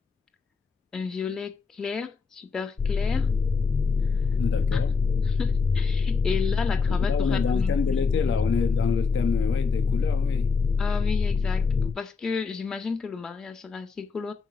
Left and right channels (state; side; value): quieter; right; 4.9 dB